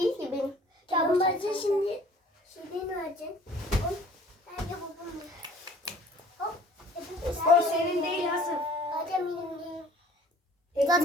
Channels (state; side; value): normal; both; correlation 0.52